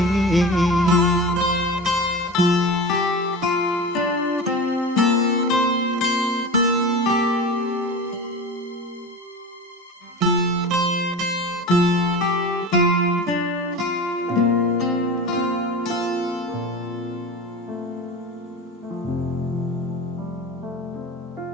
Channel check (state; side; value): normal; both; correlation 0.30